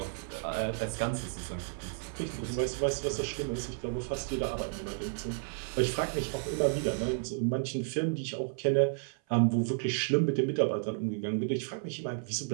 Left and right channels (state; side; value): silent; left; 56 dB below the other